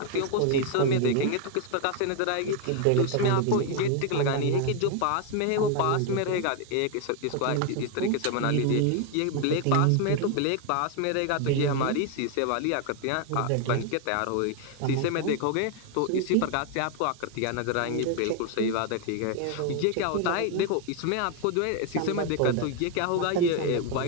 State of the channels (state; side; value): different; both; correlation 0.01